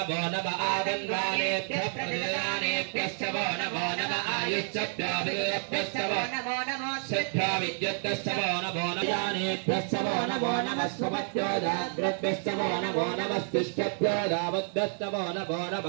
నమః ఆగంగానేభ్యః ప్రతిదానేభ్యశ్చ వో నమో నమః ఆయుశ్చభ్యాభిభ్యశ్చ వో నమో నమః సిద్ధ్యా విద్యుత్తశ్చ వో నమో నమః యానేభ్యశ్చ వో నమో నమః స్వపత్యో జాగ్రద్భ్యశ్చ వో నమో నమః తిష్ఠభ్యో దావద్భ్యశ్చ వో నమో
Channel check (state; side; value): silent; left; 58 dB below the other